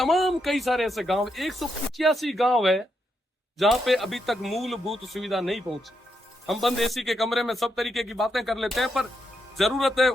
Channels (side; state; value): both; normal; correlation 0.81